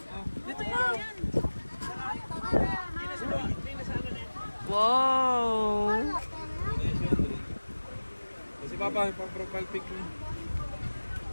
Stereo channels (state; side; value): inverted; both; correlation -1.00